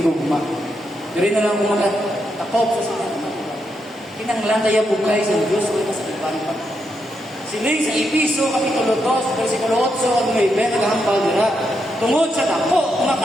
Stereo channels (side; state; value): both; normal; correlation 0.82